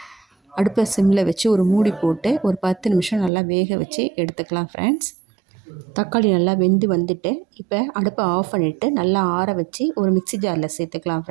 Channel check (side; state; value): left; drops out; at 3.3 s